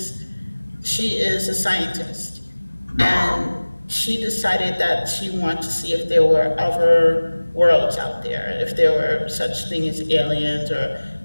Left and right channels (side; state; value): both; inverted; correlation -1.00